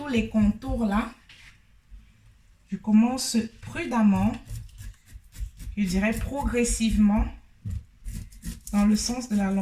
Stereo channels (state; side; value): identical; both; correlation 1.00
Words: les contours là. Je commence prudemment, je dirais progressivement, dans le sens de la